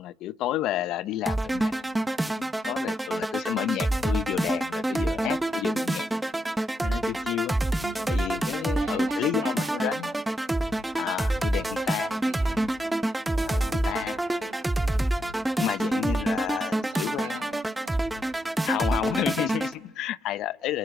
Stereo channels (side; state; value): both; normal; correlation 0.82